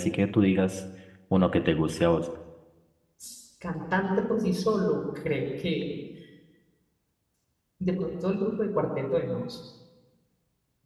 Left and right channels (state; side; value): identical; both; correlation 1.00